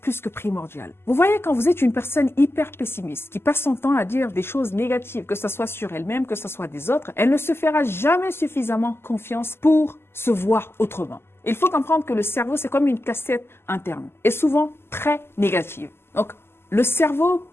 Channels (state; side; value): late; right; 0.12 ms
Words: que primordial. Vous voyez, quand vous êtes une personne hyper pessimiste, qui passe son temps à dire des choses négatives, que ce soit sur elle-même, que ce soit des autres, elle ne se fera jamais suffisamment confiance pour se voir autrement. Il faut comprendre que le cerveau, c'est comme une cassette interne, et souvent très négative. Donc, le cerveau,